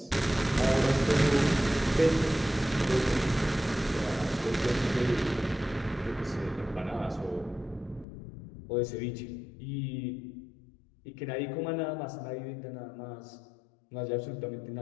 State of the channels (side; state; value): right; drops out; at 8.1 s